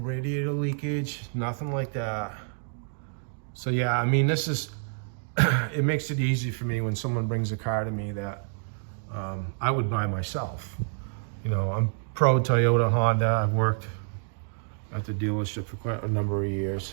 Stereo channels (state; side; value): silent; left; digital silence